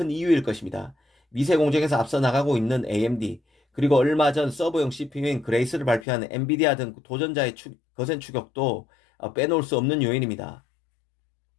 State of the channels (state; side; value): drops out; right; at 6.1 s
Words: 이유일 것입니다. 미세 공정에서 앞서 나가고 있는 AMD, 그리고 얼마 전 서버용 CPU인 그레이스를 발표한 엔비디아 등 도전자의 거센 추격도 빼놓을 수 없는 요인입니다.